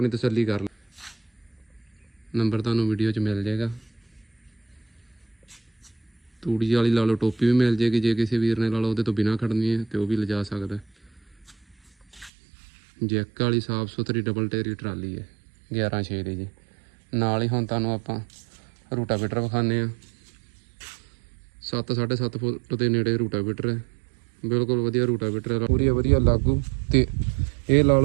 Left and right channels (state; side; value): drops out; left; at 12.3 s